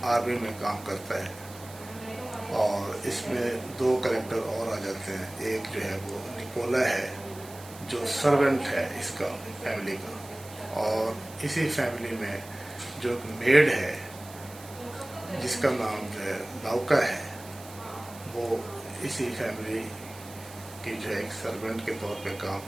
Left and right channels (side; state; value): right; noise; hiss, 18 dB below the sound